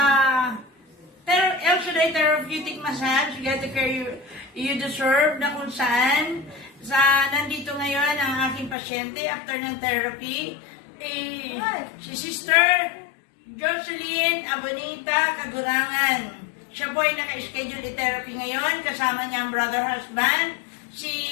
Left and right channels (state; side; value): drops out; right; at 8.8 s